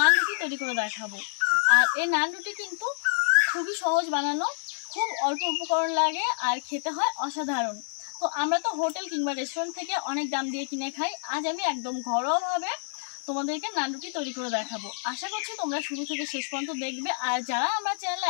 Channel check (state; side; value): silent; right; 59 dB below the other